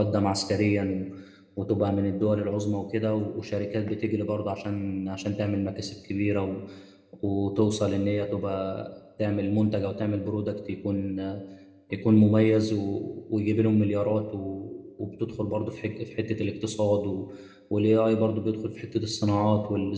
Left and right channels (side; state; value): both; identical; correlation 1.00